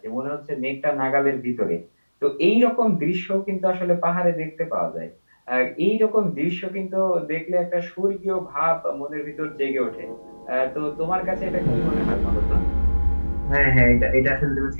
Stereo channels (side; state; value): both; inverted; correlation -1.00